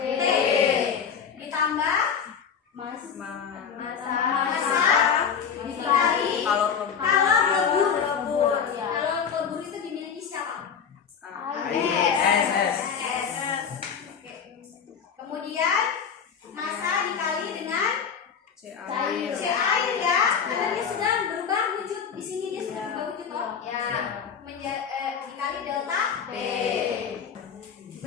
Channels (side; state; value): right; quieter; 7.0 dB